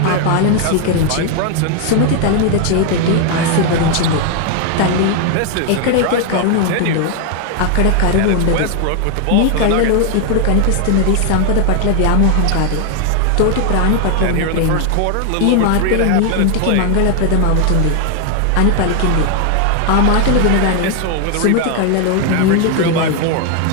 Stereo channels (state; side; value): different; both; correlation 0.00